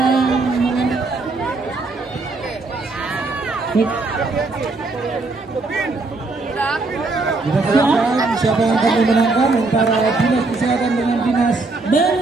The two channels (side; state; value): left; quieter; 3.5 dB